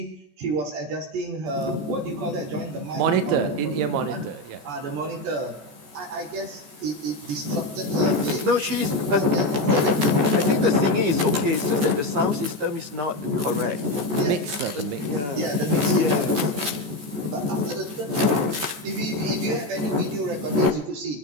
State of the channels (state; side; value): late; left; 14 ms